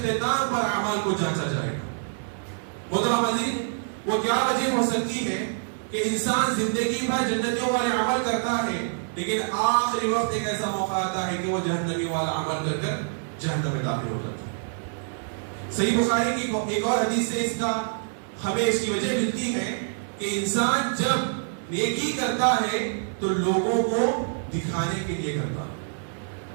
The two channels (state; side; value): silent; left; 61 dB below the other